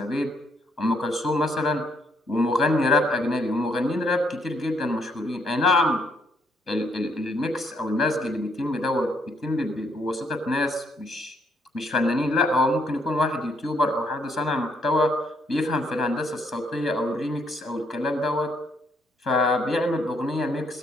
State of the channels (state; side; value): normal; both; correlation 0.71